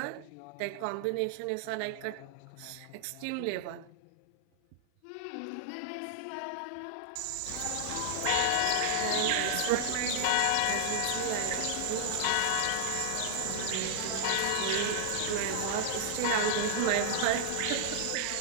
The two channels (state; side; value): different; both; correlation 0.00